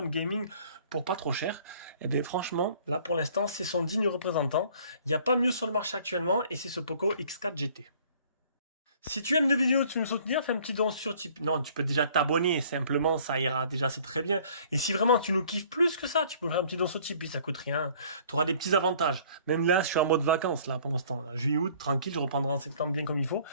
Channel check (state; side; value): inverted; both; correlation -0.55